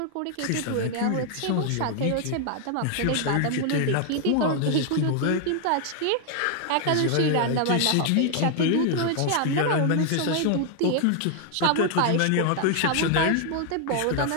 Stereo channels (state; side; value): different; both; correlation 0.00